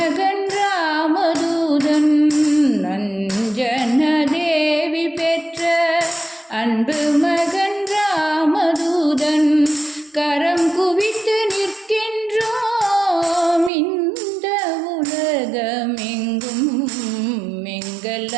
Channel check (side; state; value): left; drops out; at 13.7 s